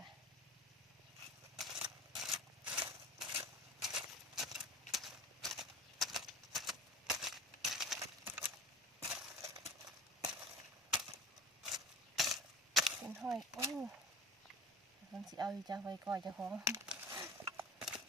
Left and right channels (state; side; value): normal; both; correlation 0.37